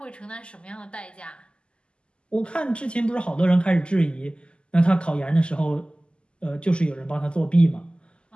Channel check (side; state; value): right; late; 0.051 ms